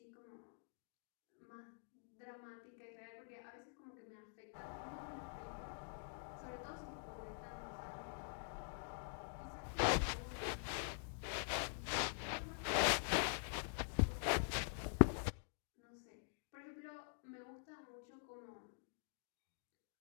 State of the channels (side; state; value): right; silent; digital silence